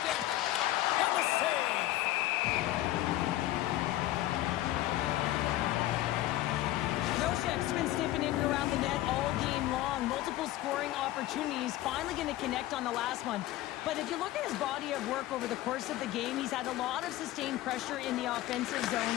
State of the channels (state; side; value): quieter; right; 15.4 dB